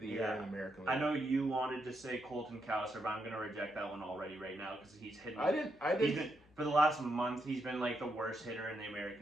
the Year in the American League. I know you wanted to say Colton Cowser, but I'm going to reject that one already right now because he's hitting. I didn't. For the last month, he's been the worst hitter in the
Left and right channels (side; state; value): left; noise; hum, 29 dB below the sound